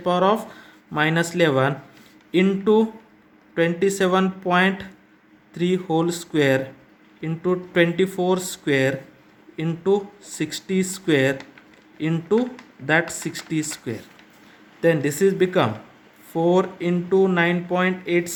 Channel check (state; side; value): identical; both; correlation 1.00